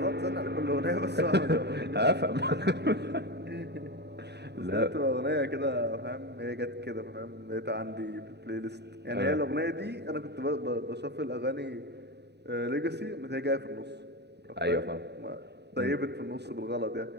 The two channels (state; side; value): late; left; 0.49 ms